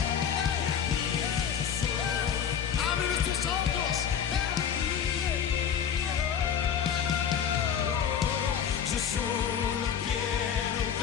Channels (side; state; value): right; quieter; 8.2 dB